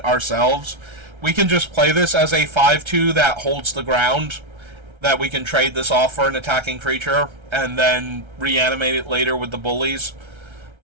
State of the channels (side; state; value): left; late; 1.3 ms